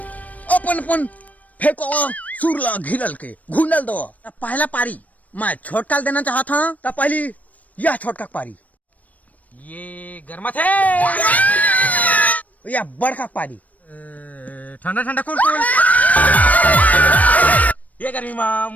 अपन अपन फेंको सुरला घिलल के घुंडल दो। पहला पारी मैं छोटका देना चाहता हूँ। तो पहली यह छोटका पारी ये गर्मा थे या बड़का पारी ठंडा ठंडा कूल कूल। ये गर्मी में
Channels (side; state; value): right; late; 0.072 ms